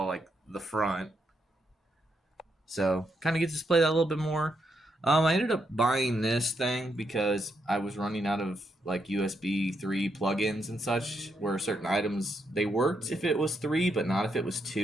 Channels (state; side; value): normal; both; correlation 0.80